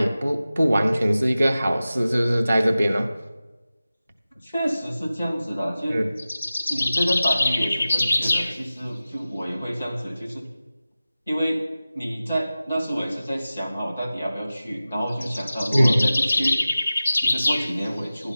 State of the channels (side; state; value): both; inverted; correlation -0.96